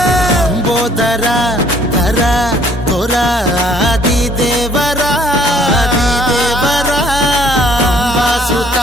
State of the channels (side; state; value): both; normal; correlation 0.59